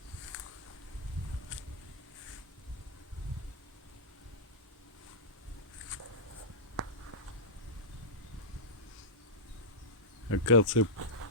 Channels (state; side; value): normal; both; correlation -0.12